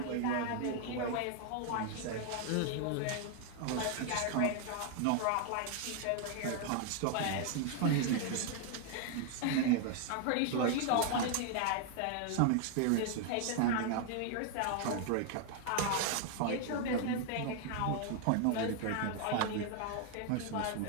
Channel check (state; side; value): different; both; correlation 0.00